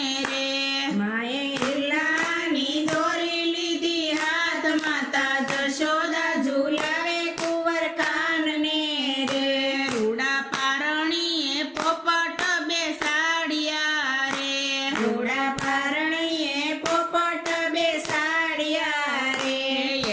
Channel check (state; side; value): identical; both; correlation 1.00